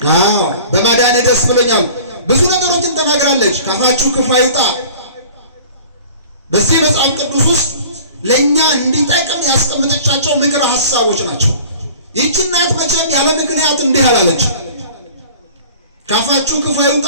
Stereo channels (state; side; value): inverted; both; correlation -0.44